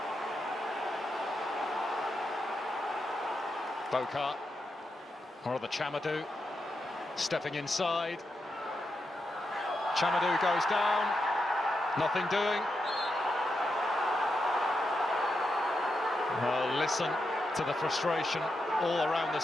Bokar, or the Chamadou, stepping inside. Chamadou goes down, nothing doing. Well, listen to the frustration all around the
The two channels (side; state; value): both; normal; correlation 0.85